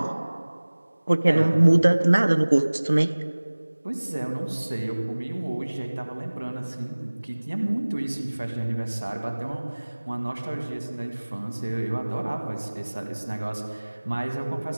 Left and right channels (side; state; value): both; inverted; correlation -1.00